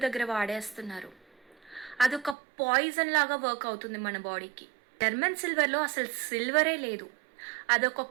దగ్గర వాడేస్తున్నారు. అదొక పాయిజన్ లాగా వర్క్ అవుతుంది మన బాడీకి. జర్మన్ సిల్వర్లో అసలు సిల్వరే లేదు. అదొక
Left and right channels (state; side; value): drops out; left; at 2.4 s